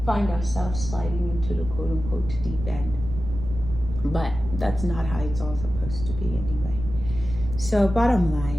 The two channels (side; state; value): right; noise; rumble, 8 dB below the sound